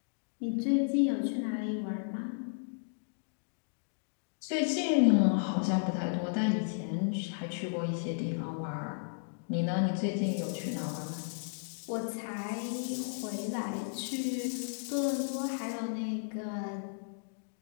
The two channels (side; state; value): right; silent; digital silence